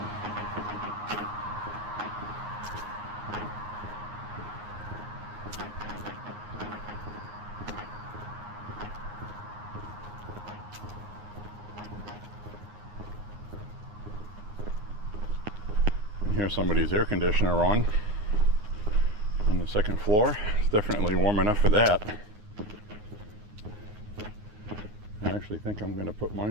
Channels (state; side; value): late; left; 9.6 ms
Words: Here's somebody's air conditioner on the second floor. It's definitely warm enough for that. I actually think I'm going to put